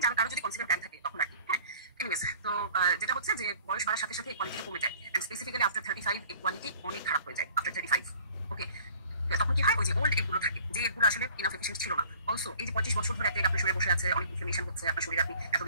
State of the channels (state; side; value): inverted; both; correlation -0.51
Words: যারা কারো যদি কনসিডার প্ল্যান থাকে তখন আর কি। হ্যাঁ, এনিওয়েজ তো যেটা হচ্ছে যে বয়স বাড়ার সাথে সাথে কোয়ালিটিটা কমে যায়, এন্ড স্পেসিফিক্যালি আফটার 35 এই কোয়ালিটি অনেক খারাপ হয়ে যায় আফটার 35। ওকে, তখন কি হয়, ওই যে ওল্ড এগুলো থাকে, যে এগুলো আসলে ইনাফ এফিশিয়েন্ট ছিল না। অলসো এই যে 25 বছর ধরে একটা আপনার শরীরে বসে আছে, অনেক ইনফ্লামেশন হচ্ছে আপনার শরীরে, আপনি